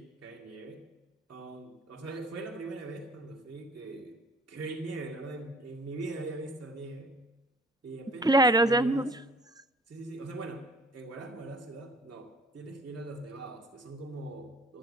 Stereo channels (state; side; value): normal; both; correlation 0.53